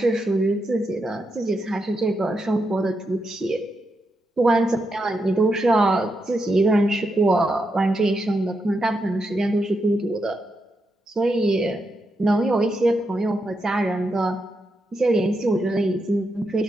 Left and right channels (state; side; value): normal; both; correlation 0.84